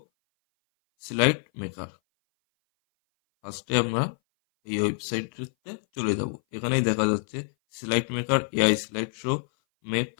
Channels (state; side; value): silent; right; 58 dB below the other